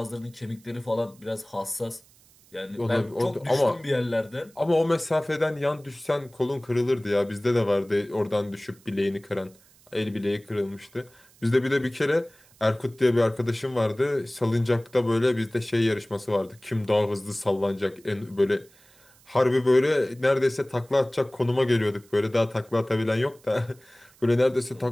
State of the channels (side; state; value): right; noise; hiss, 28 dB below the sound